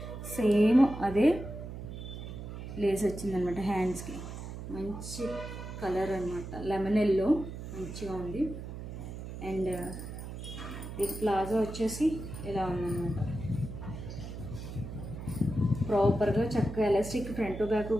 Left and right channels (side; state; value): right; noise; hum, 9 dB below the sound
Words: సేమ్ అదే లేస్ వచ్చిందనమాట. హ్యాండ్స్కి మంచి కలర్ అనమాట, లెమన్ ఎల్లో మంచిగా ఉంది. అండ్ ఈ ప్లాజో వచ్చేసి ఇలా ఉందన్నమాట, ప్రాపర్గా చక్కగా ఎలాస్టిక్ ఫ్రంట్ బ్యాక్